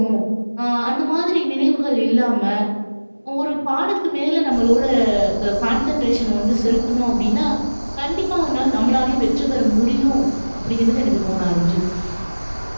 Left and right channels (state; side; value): inverted; both; correlation -1.00